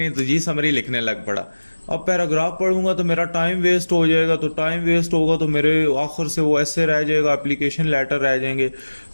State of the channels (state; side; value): inverted; both; correlation -1.00